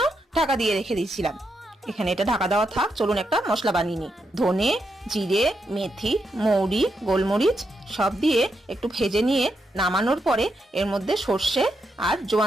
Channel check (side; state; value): both; normal; correlation 0.82